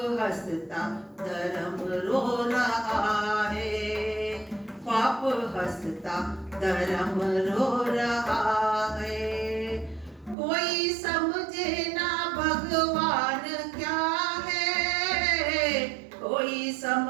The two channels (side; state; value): left; drops out; at 10.4 s